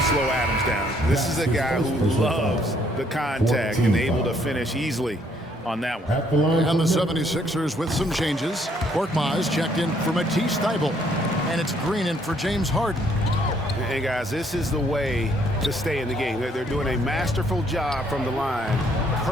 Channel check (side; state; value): both; normal; correlation 0.67